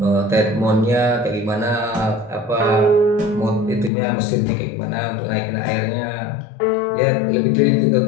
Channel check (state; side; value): drops out; right; at 3.9 s